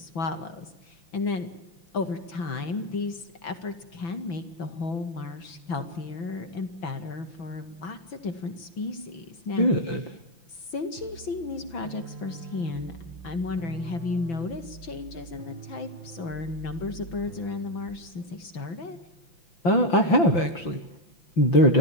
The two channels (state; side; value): late; right; 6.0 ms